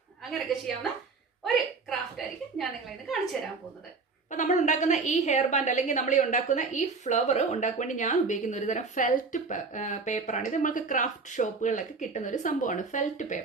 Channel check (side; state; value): left; quieter; 4.3 dB